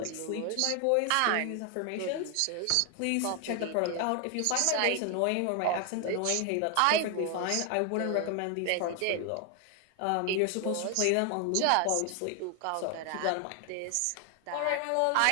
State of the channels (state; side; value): different; both; correlation 0.00